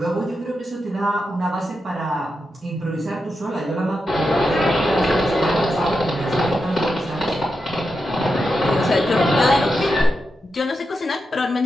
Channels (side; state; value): both; normal; correlation 0.87